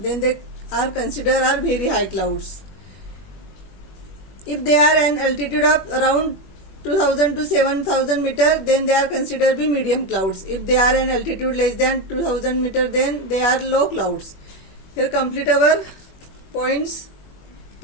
they are considered are very high clouds. If they are an altitude of around 2,000 to 7,000 meter, then they are considered to be medium clouds. If they are an altitude less than 2,000 meter, then they are low clouds. Here complete our points,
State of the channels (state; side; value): late; right; 21 ms